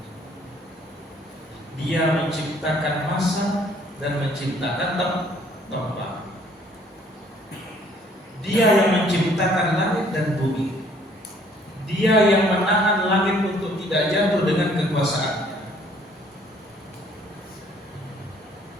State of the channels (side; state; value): both; normal; correlation 0.61